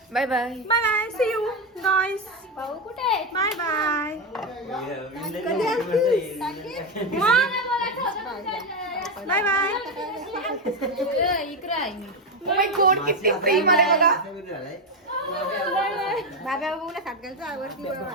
Bye bye bye bye. See you guys. भाऊ कुठे बाय बाय. Bye bye. इकडे आहे. ओ माय गॉड किती प्रेम आले बघा. बाबा बोला सातगालचा आवडती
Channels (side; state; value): both; normal; correlation 0.09